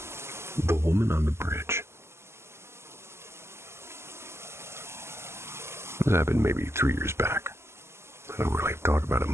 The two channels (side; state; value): left; late; 0.13 ms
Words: The woman on the bridge. This happened maybe 3 years back. I don't really talk about it